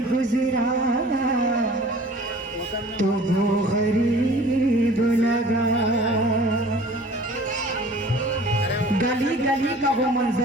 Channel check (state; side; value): normal; both; correlation 0.47